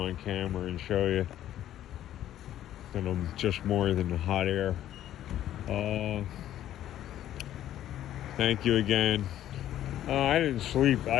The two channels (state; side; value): quieter; right; 12.2 dB